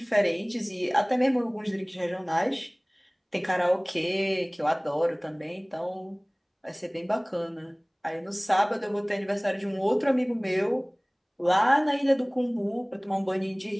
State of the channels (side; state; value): both; identical; correlation 1.00